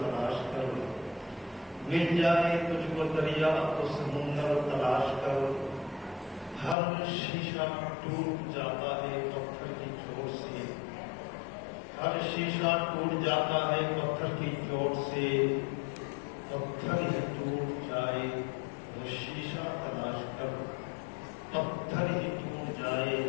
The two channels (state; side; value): drops out; right; at 6.8 s